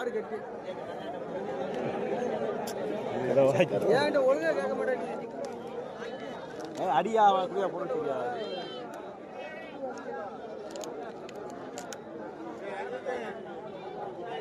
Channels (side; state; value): both; identical; correlation 1.00